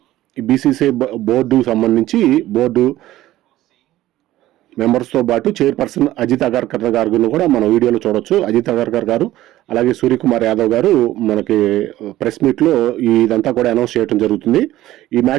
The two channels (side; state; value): left; quieter; 15.2 dB